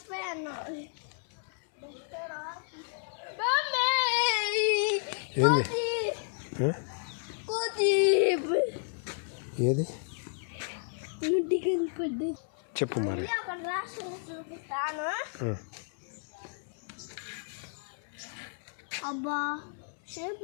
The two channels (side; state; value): right; silent; 56 dB below the other